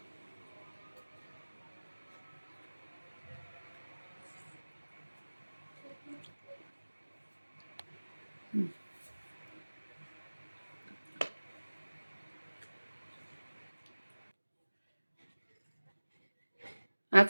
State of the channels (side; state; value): both; inverted; correlation -1.00